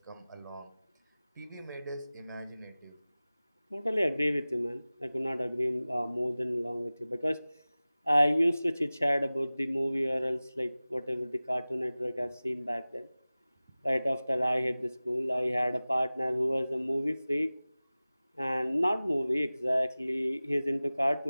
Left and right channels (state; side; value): inverted; both; correlation -0.98